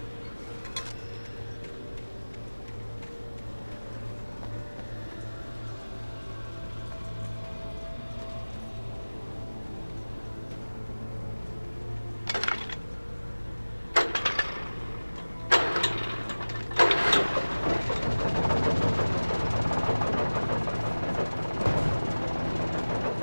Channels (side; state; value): both; inverted; correlation -1.00